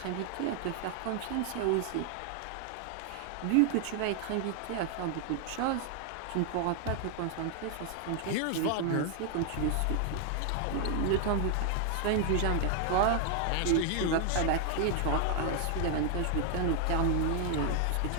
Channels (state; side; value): different; both; correlation 0.00